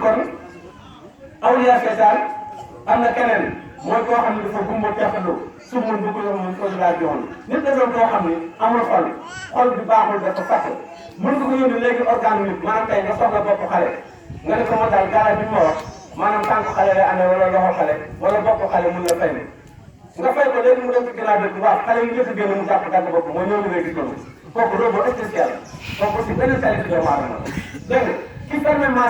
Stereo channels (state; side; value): identical; both; correlation 1.00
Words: awliya seytaan am na keneen mooy koo xam ne dafa gumba teexalu sumul bu ko mun ko laa joon nit da doon koo xam ne amul xol bi baaxul dafa fàtte mën nga ko yónni léegi organe nit maanaam tey nga soxla bopp xale nga ne ko moo daal garab bi ma wax maanaam tànk xale lay amee wala loxo xale wala bopp xale mun la fay ne nga fay ko léegi mu dem ci ginnaaw bi waaw xale yi njëkk a génn mu jàpp dagg bopp mooy ñëw ngay gis noonu kooku robot spécial kooku aussi benn qualité doomu aadama la dégg nga ki fermé